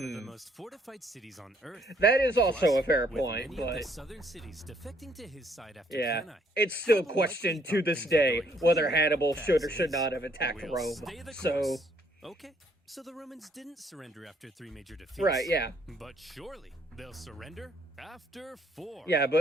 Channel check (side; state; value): both; normal; correlation 0.66